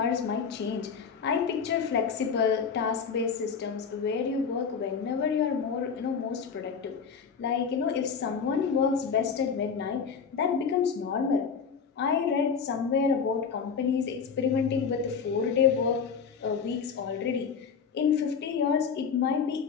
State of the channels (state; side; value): quieter; right; 6.2 dB